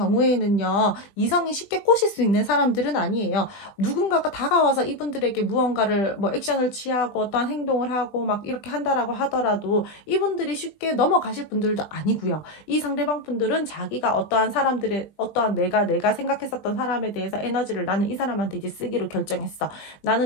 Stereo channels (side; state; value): right; late; 20 ms